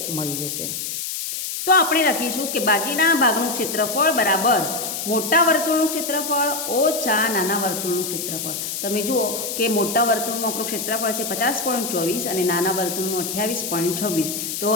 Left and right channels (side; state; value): left; noise; hiss, 4 dB below the sound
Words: મળી જશે. તો આપણે લખીશું કે બાકીના ભાગનું ક્ષેત્રફળ બરાબર મોટા વર્તુળનું ક્ષેત્રફળ ઓછા નાના વર્તુળનું ક્ષેત્રફળ. તમે જુઓ કે મોટા વર્તુળનું આપણું ક્ષેત્રફળ છે 50.24 અને નાના વર્તુળનું 28.26. તો